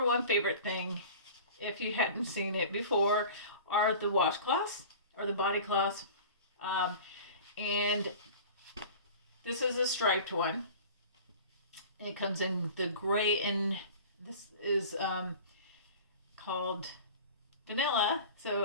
one favorite thing, if you hadn't seen it before, are the washcloths or the body cloths. And this is a striped one. It comes in the gray, and this is called vanilla.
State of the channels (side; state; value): both; inverted; correlation -0.39